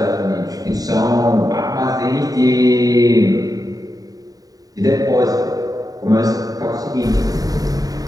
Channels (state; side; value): late; left; 0.18 ms